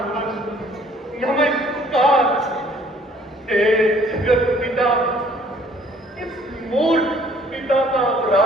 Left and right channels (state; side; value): normal; both; correlation 0.58